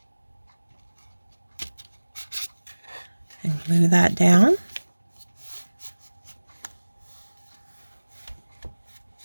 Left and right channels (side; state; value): both; inverted; correlation -1.00